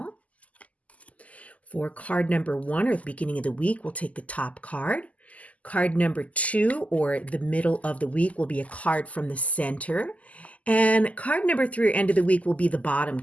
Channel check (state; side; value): late; right; 0.071 ms